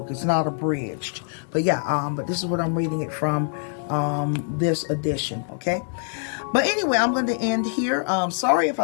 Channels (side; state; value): right; silent; 56 dB below the other